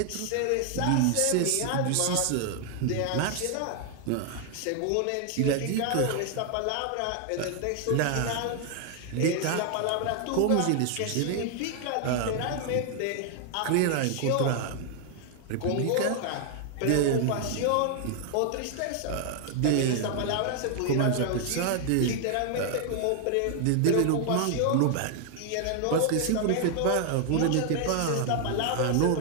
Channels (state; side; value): different; both; correlation 0.00